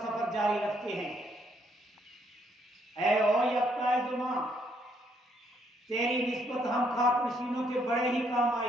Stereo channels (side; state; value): both; normal; correlation 0.71